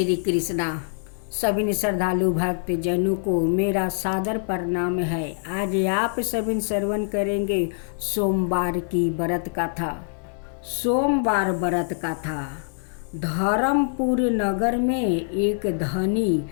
कृष्णा। सभी श्रद्धालु भक्त जनों को मेरा सादर प्रणाम है। आज आप सभी श्रवण करेंगे सोमवार की व्रत कथा। सोमवार व्रत कथा। धर्मपुर नगर में एक धनी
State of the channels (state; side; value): silent; right; 57 dB below the other